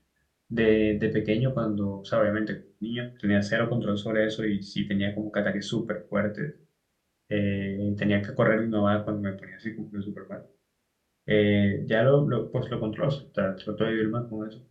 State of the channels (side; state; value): both; identical; correlation 1.00